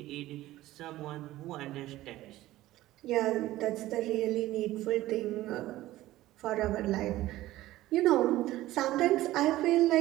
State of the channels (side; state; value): left; quieter; 16.0 dB